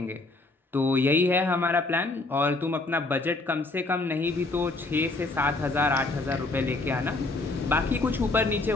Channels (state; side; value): quieter; right; 3.2 dB